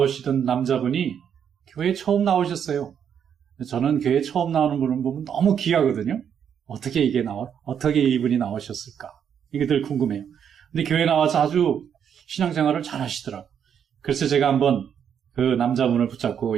남자분이 교회에 처음 나오셨어요. 저는 교회에 처음 나오는 분을 보면 너무 귀하거든요. 어떻게 이분이 나오셨을까? 이게 늘 궁금해요. 근데 교회에 나와서 아주 신앙생활을 잘 하시더라고요. 그래서 제가 한번 그 남자분을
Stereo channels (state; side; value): quieter; left; 8.2 dB